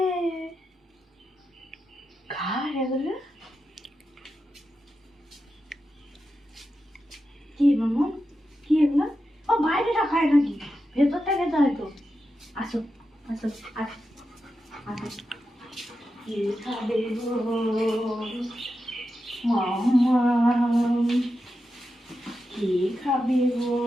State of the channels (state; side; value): normal; both; correlation 0.89